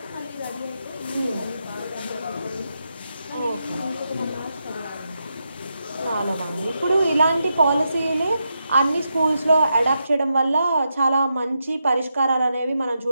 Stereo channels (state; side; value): inverted; both; correlation -0.85